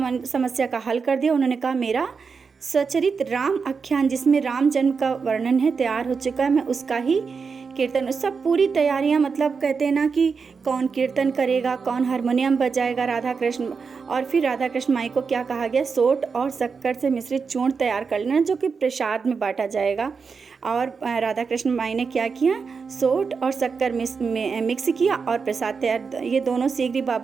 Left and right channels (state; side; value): quieter; left; 5.3 dB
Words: समस्या का हल कर दिया। उन्होंने कहा मेरा सचरित राम आख्यान, जिसमें राम जन्म का वर्णन है, तैयार हो चुका है, मैं उसका ही कीर्तन। सब पूरी तैयारियां, मतलब कहते हैं ना कि कौन कीर्तन करेगा, कौन हारमोनियम बजाएगा, राधा कृष्ण। और फिर राधा कृष्ण माई को क्या कहा गया, सोट और शक्कर से मिश्रित चूर्ण तैयार कर लेना, जो कि प्रसाद में बांटा जाएगा। और राधा कृष्ण माई ने क्या किया, सोट और शक्कर मिक्स किया और प्रसाद तैयार। ये दोनों शीघ्र